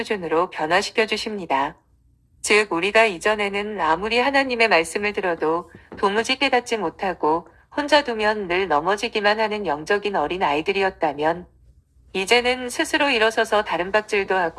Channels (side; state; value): both; identical; correlation 1.00